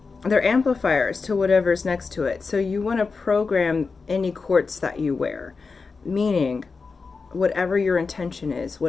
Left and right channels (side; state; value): right; quieter; 4.6 dB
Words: they're amplifiers to whatever's next to it. So you want to program any quartz that you wear, meaning whatever your intention is,